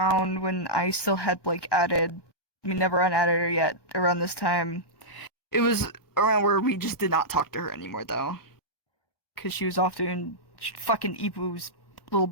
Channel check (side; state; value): right; late; 1.2 ms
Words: when I still had like added. I mean, never unadded her yet. Around this time, it was around where we just did not talk to her anymore, though, because she was off doing fucking Ipu's little